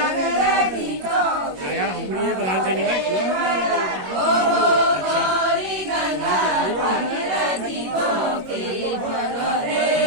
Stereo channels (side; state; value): left; late; 21 ms